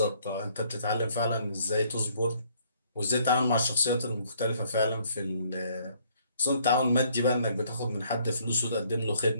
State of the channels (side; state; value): both; inverted; correlation -0.64